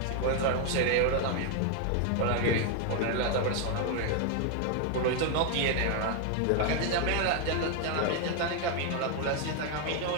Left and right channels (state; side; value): different; both; correlation 0.01